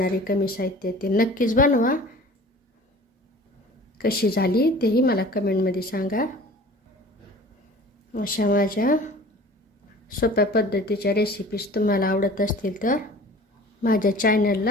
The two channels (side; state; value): both; normal; correlation 0.44